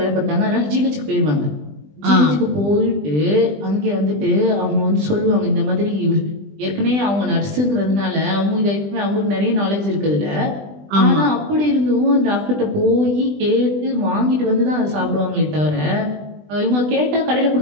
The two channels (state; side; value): late; left; 20 ms